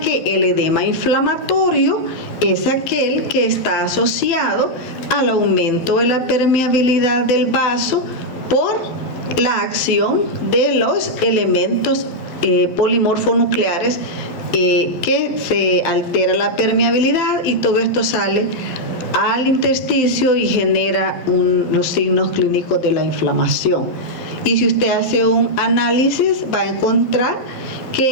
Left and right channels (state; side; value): late; right; 12 ms